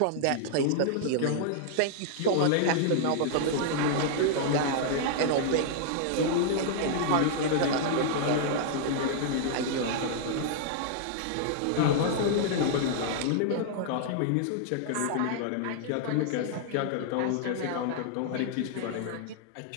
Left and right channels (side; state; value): both; different; correlation -0.01